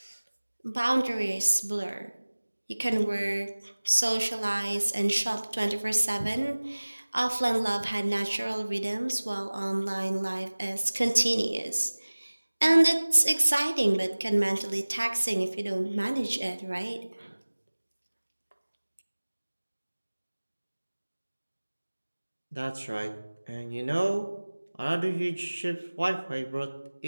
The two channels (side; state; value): both; inverted; correlation -1.00